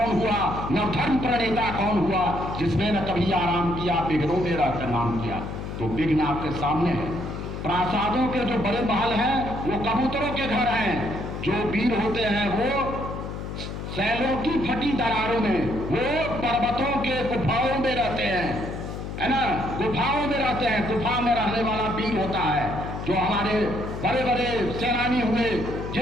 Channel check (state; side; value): noise; left; hum, 7 dB below the sound